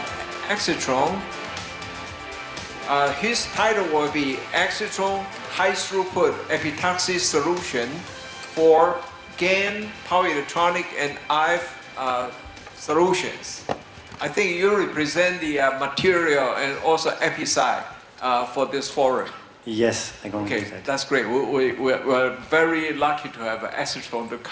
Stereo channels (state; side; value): identical; both; correlation 1.00